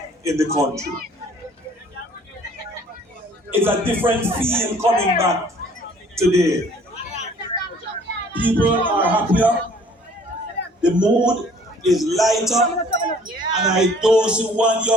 in the country. It's a different feel coming back today. People are happier, the mood is lighter, and I don't see one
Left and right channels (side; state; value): both; normal; correlation 0.55